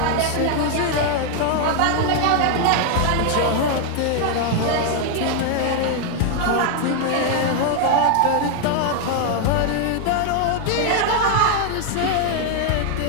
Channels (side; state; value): both; different; correlation 0.00